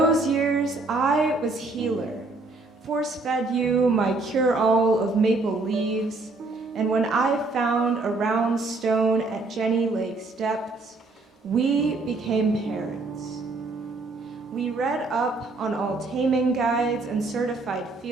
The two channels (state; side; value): quieter; left; 3.4 dB